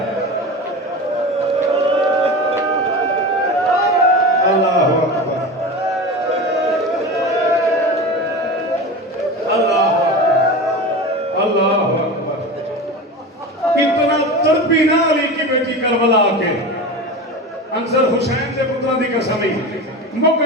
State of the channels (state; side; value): normal; both; correlation 0.28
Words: अल्लाह अकबर, अल्लाह अल्लाह अकबर। इतना तड़पी ना अली की बेटी करबला के अंसर हुसैन से पुत्रा दी कसम ही मुक